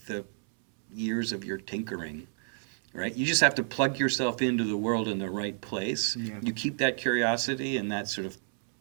the years of your tinkering, right? You just have to plug yourself into the world in the right place. Yeah. You keep that curiosity and that sort of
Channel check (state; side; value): silent; left; 58 dB below the other